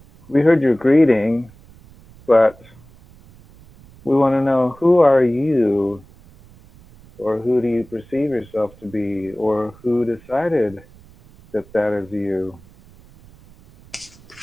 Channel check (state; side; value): noise; right; rumble, 25 dB below the sound